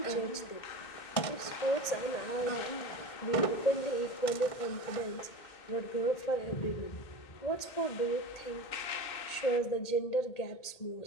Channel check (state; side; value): late; right; 2.2 ms